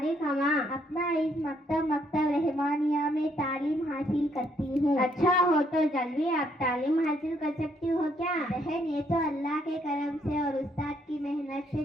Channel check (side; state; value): both; normal; correlation 0.70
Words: कहाँ? अपना इस मकतब रहमानिया में तालीम हासिल करती हूँ। अच्छा हो तो जल्दी आप तालीम हासिल कर सकती हो क्या? बहन ये तो अल्लाह के करम से और उस्ताद की मेहनत से